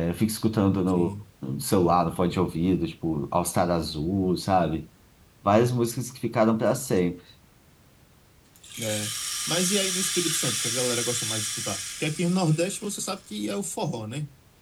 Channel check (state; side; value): identical; both; correlation 1.00